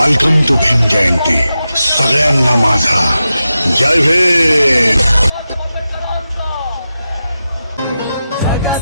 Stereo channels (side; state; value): both; inverted; correlation -0.92